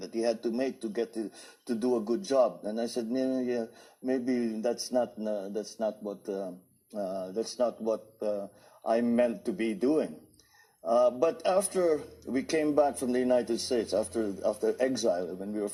to get to do a good job. And I said, yeah, maybe that's not what I'm meant to be doing. But after we came back from the United States, after exile, when we were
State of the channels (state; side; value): identical; both; correlation 1.00